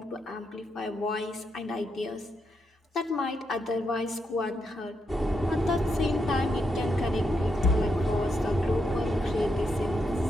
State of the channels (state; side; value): normal; both; correlation 0.81